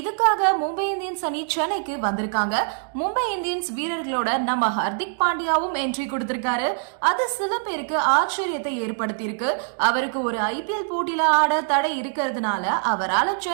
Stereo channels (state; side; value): silent; left; digital silence